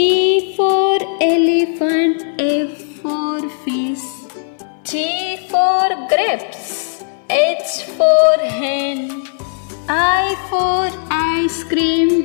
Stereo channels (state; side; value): silent; right; 64 dB below the other